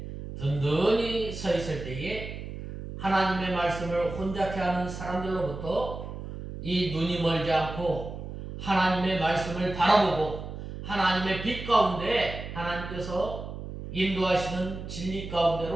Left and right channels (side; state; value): right; noise; hum, 9 dB below the sound